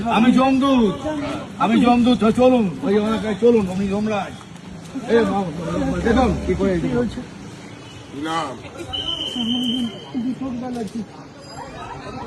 আমি জমদূত, চলুন ওই এলাকায় চলুন। আমি যমরাজ। দেখুন কি করে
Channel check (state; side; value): identical; both; correlation 1.00